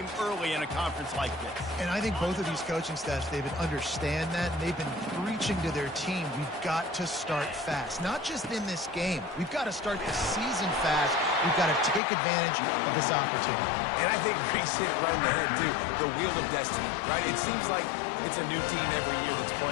early in a conference like this. And I think both of these coaching staffs, David, understand that, and they've been preaching to their team, we've got to start fast. Not just in this game. We've got to start the season fast. We've got to take advantage of this opportunity. And I think Reese hit it right in the head, too. The Wheel of Destiny, right? It seems like it's a new team every year that's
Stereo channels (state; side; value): drops out; right; at 12.0 s